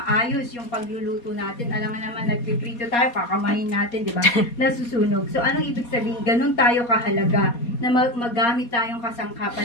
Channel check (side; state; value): right; late; 4.2 ms